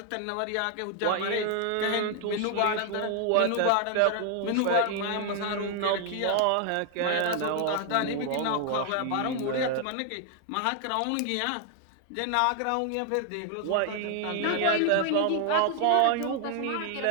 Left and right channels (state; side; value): different; both; correlation 0.00